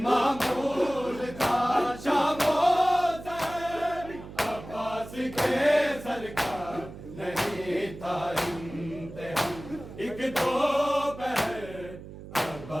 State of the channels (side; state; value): right; noise; hum, 14 dB below the sound